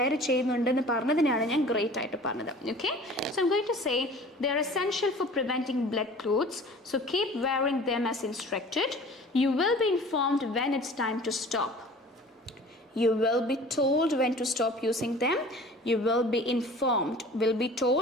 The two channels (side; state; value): both; normal; correlation 0.45